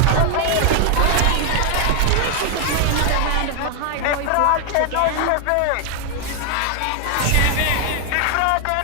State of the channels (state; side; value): different; both; correlation 0.00